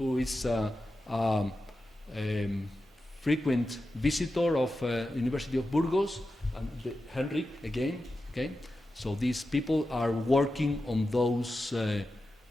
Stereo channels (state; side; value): normal; both; correlation 0.91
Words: is a frequent visitor of University of Burgos, and Henrik again. Okay, so these people are working on those